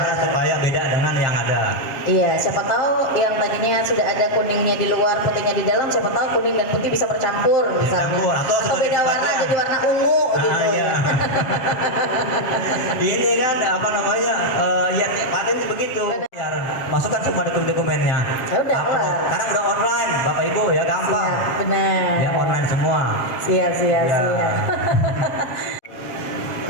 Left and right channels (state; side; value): late; right; 7.3 ms